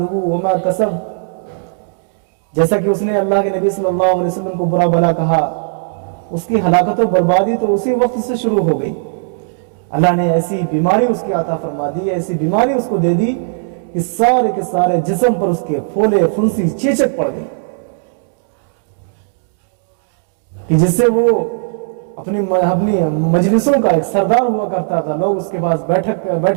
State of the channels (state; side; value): silent; left; digital silence